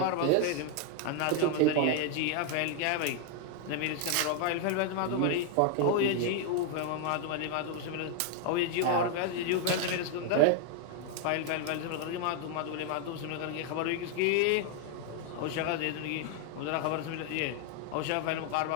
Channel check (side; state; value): both; different; correlation 0.00